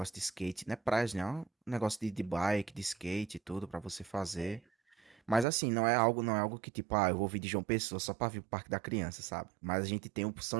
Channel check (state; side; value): drops out; left; at 5.5 s